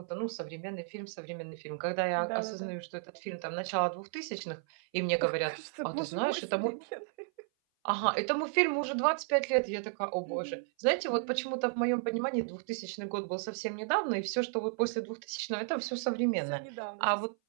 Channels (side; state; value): left; silent; 55 dB below the other